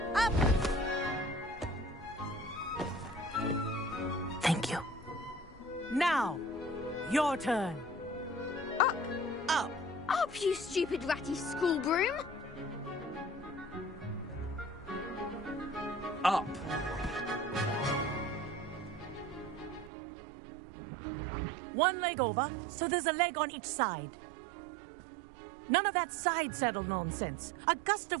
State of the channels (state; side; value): drops out; left; at 19.9 s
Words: Up! Thank you. Now, your turn. Up! Up! Up, you stupid ratty school broom! Up! One leg over, so there's a leg on each side. None of that side saddle nonsense. A gust